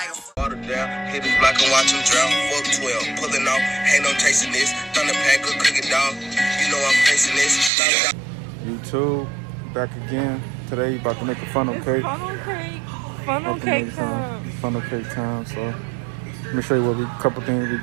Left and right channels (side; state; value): left; drops out; at 7.7 s